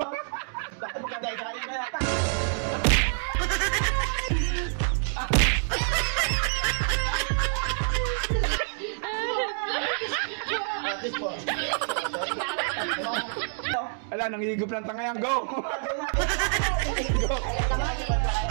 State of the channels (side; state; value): left; silent; 60 dB below the other